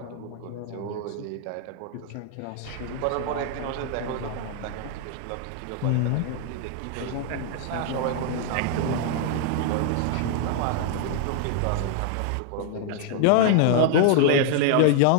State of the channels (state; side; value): different; both; correlation 0.00